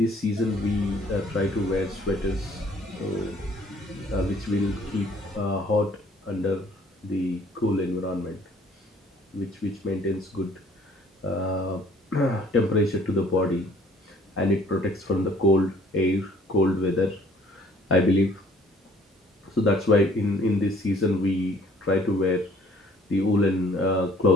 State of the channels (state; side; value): normal; both; correlation 0.57